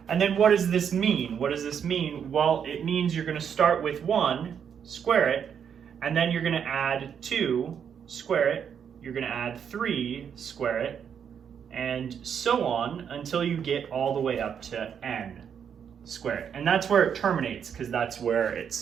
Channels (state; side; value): quieter; left; 7.8 dB